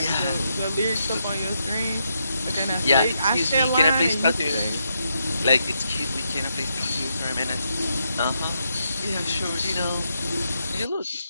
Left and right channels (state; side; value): inverted; both; correlation -0.81